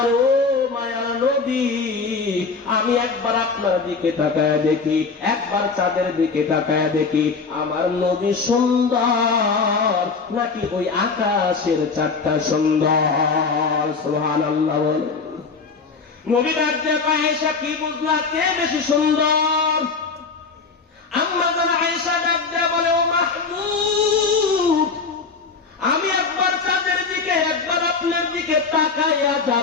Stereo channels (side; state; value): right; quieter; 4.7 dB